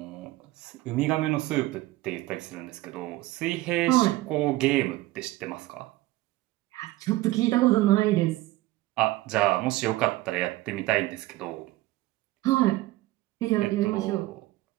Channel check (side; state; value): left; quieter; 17.9 dB